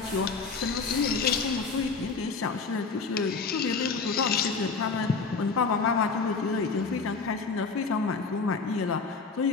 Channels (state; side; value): quieter; right; 4.7 dB